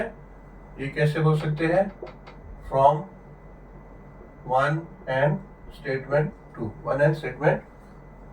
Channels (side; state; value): both; identical; correlation 1.00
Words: ये कैसे बोल सकते हैं, फ्रॉम 1 एंड स्टेटमेंट